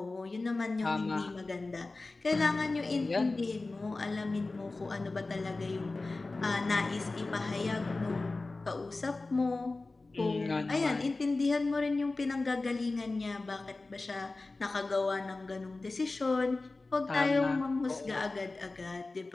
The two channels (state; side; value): quieter; right; 3.4 dB